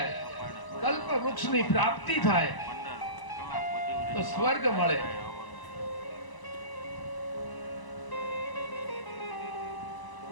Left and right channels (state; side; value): late; right; 1.0 ms